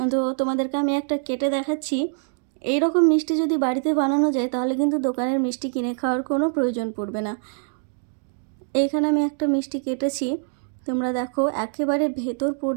তো তোমাদেরকে আমি একটা কেটে দেখাচ্ছি। এই রকম মিষ্টি যদি বাড়িতে বানানো যায় তাহলে কিন্তু দোকানের মিষ্টি কিনে খাওয়ার কোনো প্রয়োজন পড়বে না। এইখানে আমি একটা মিষ্টি কেটেছি, তোমরা দেখো একেবারে ভেতর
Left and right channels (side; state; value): left; silent; digital silence